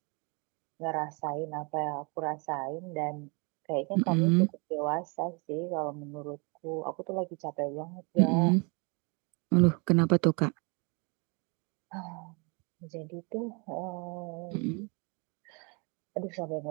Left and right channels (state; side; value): quieter; left; 32.3 dB